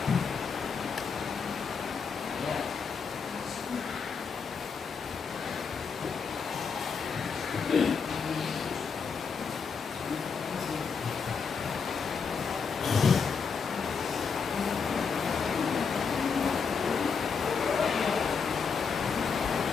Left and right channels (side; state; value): right; quieter; 5.7 dB